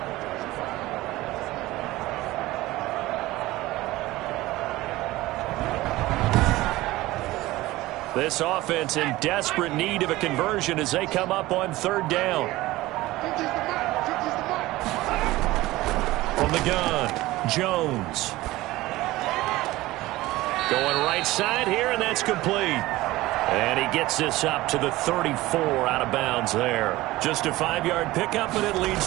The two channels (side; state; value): left; quieter; 18.1 dB